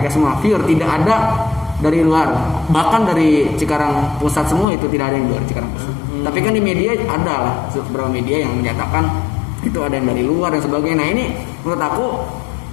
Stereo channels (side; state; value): right; drops out; at 4.7 s